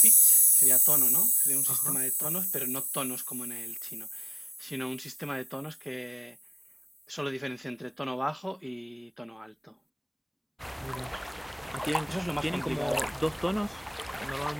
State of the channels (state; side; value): identical; both; correlation 1.00